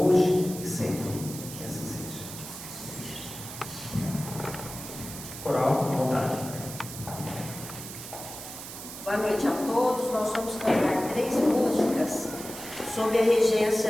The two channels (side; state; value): right; noise; hiss, 11 dB below the sound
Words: e sempre, que assim seja. Coral, à vontade. Boa noite a todos. Nós vamos cantar 3 músicas sob a